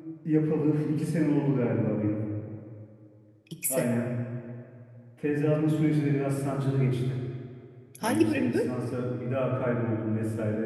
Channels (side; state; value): both; identical; correlation 1.00